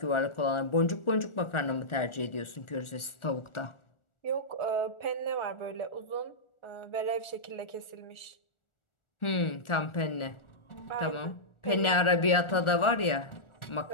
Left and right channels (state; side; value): late; right; 1.4 ms